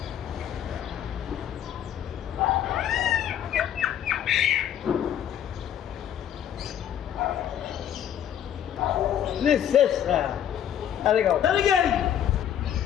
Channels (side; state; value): right; quieter; 10.1 dB